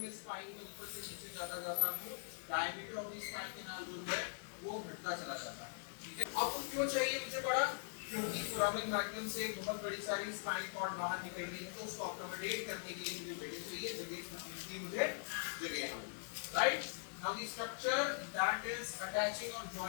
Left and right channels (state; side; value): silent; right; digital silence